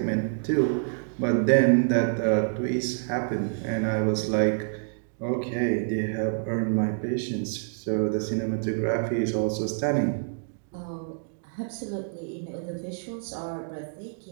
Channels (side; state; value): left; silent; digital silence